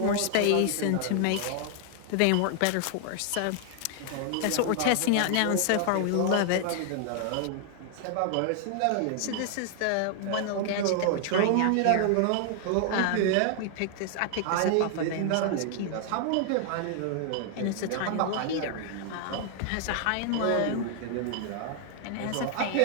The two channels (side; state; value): both; different; correlation 0.00